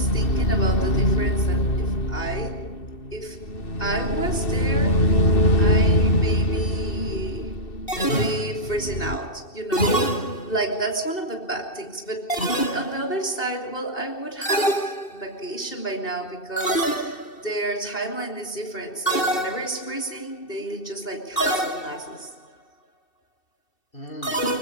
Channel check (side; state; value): right; late; 2.7 ms